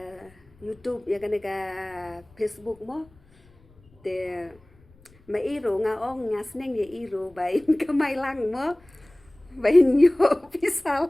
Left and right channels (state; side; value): noise; left; rumble, 29 dB below the sound